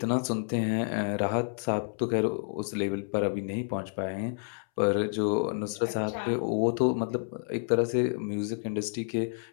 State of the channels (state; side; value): silent; right; 58 dB below the other